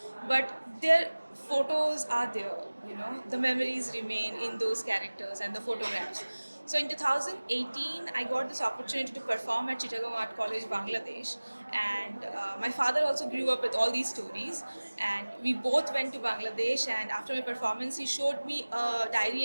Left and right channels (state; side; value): inverted; both; correlation -1.00